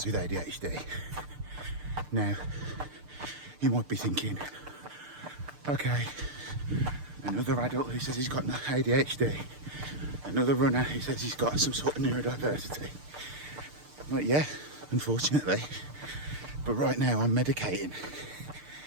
with ADHD. Now, you might be thinking, okay, another adult who says he's got ADHD, another runner who says he's got some sort of neurodiversity. Like, yeah, unfortunately, but right now I'm medicating.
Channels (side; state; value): left; late; 6.7 ms